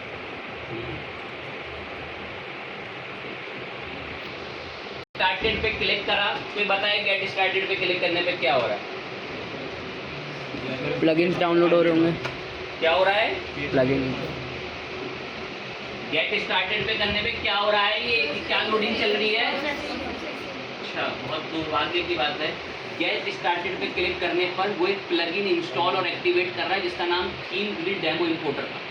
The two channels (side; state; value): both; identical; correlation 1.00